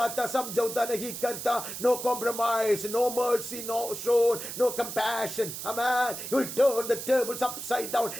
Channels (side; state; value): right; noise; hiss, 8 dB below the sound